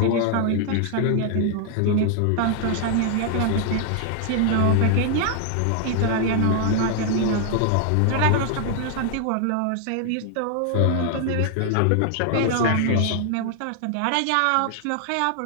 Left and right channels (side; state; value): both; different; correlation 0.00